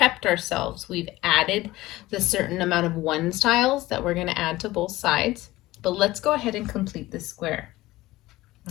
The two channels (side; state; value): right; quieter; 17.9 dB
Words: ourselves. We've added the certain amount of ones tiles that we're going to add to both sides. But let's go ahead and complete the square.